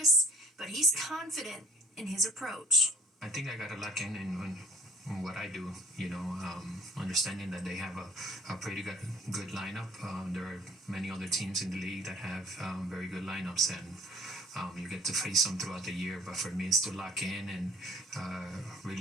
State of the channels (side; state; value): both; normal; correlation 0.54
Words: but he's confident in his approach. I think I got to lock in what I do, understanding that they have a pretty good lineup. There are many other teams in the league that have very good lineups, and you get to face them throughout the year. But for me, it's to lock in and